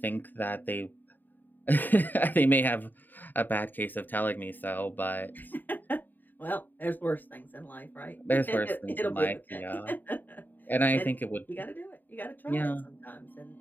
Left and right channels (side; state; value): right; late; 0.089 ms